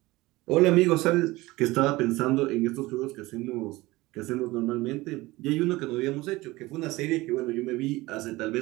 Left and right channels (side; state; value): left; quieter; 20.0 dB